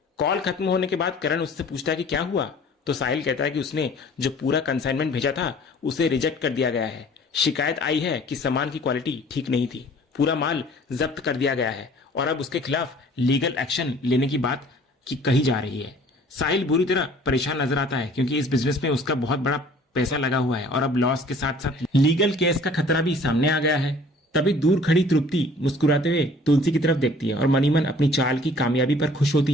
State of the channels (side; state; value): both; normal; correlation 0.51